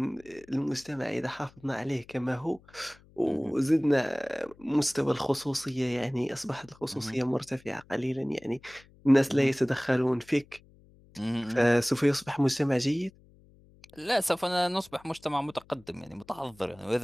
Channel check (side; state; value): left; noise; hum, 27 dB below the sound